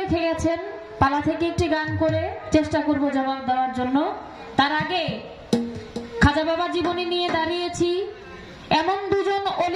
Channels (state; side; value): identical; both; correlation 1.00